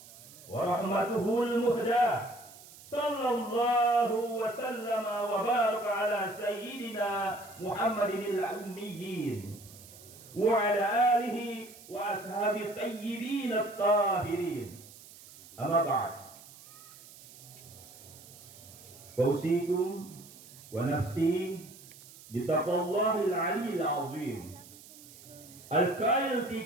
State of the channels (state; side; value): noise; right; hiss, 19 dB below the sound